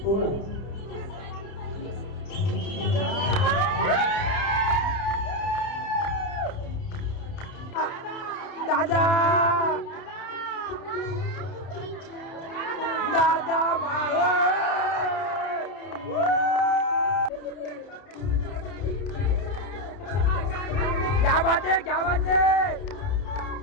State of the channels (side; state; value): right; late; 30 ms